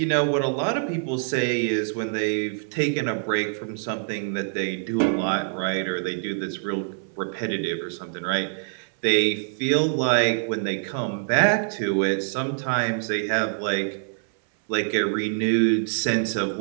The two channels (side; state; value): left; silent; 62 dB below the other